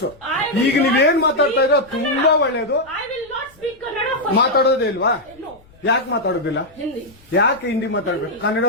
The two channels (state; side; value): noise; left; rumble, 28 dB below the sound